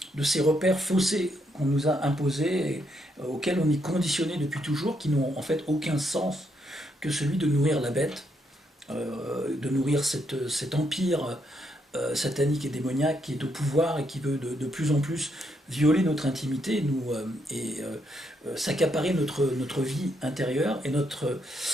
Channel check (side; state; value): both; normal; correlation 0.77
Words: ces repères faussés qu'on nous a imposés, et auxquels on est conditionné depuis toujours, qui n'ont en fait aucun sens que celui de nourrir la bête, de nourrir cet empire satanique et démoniaque qui est au pouvoir et qui veut de plus en plus violer notre intimité s'accaparer notre vie intérieure et